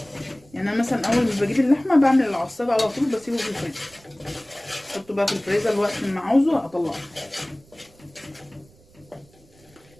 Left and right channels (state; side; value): noise; right; rumble, 28 dB below the sound